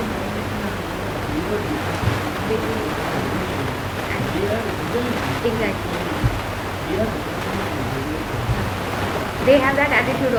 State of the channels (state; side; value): identical; both; correlation 1.00